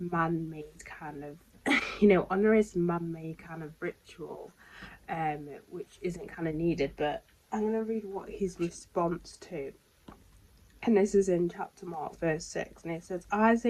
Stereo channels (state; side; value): identical; both; correlation 1.00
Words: kind of honorous man-made kind of ritual, which isn't kind of needed. But I'm going to read what his response to, and this is in chapter Mark, verse 6, and it says,